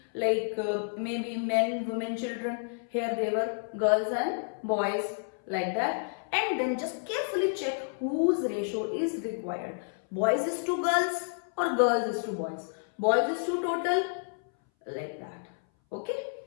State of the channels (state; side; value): silent; right; 58 dB below the other